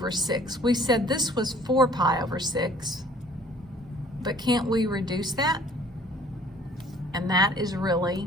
6. We said this was 4 pi over 6, but can't we reduce that? And that is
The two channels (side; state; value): both; normal; correlation 0.54